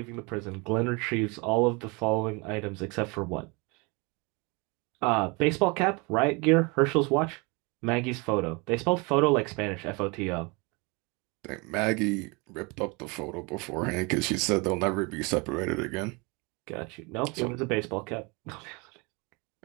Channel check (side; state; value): left; quieter; 28.8 dB